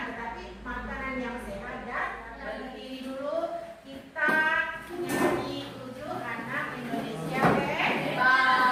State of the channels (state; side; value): identical; both; correlation 1.00